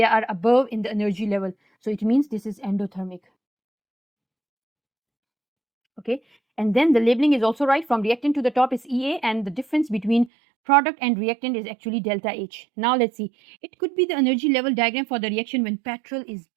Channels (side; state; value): left; drops out; at 10.3 s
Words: are above in the energy level. So it means this is endothermic. Okay, and then the labeling is also right. From reactant to the top is EA, and the difference between product and reactant is actually delta H. Now let's see. It could be the energy level diagram for the reaction when petrol is